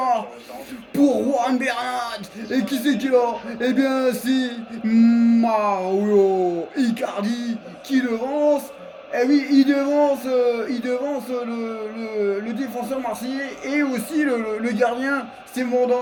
pour Juan Bernat. Et qui c'est qui est là? Eh bien, c'est Mauro Icardi qui devance. Eh oui, il devance le défenseur marseillais et aussi le gardien, c'est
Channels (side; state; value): both; identical; correlation 1.00